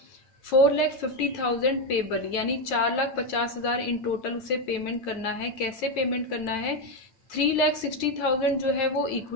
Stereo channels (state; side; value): late; right; 9.4 ms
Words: 4,50,000 payable, यानी 4,50,000 इन टोटल उसे पेमेंट करना है। कैसे पेमेंट करना है? 3,60,000 जो है वो